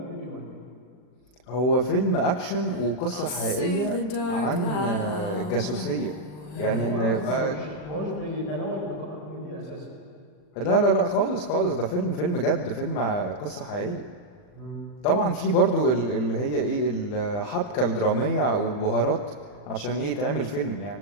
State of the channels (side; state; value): right; late; 40 ms